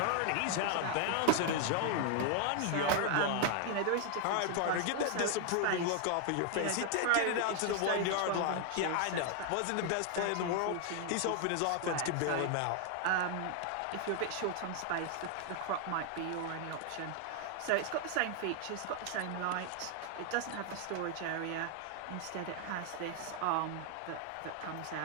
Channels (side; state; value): both; different; correlation 0.00